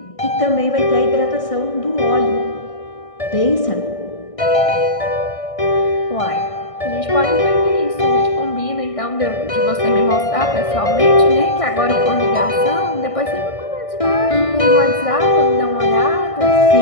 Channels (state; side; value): late; right; 1.6 ms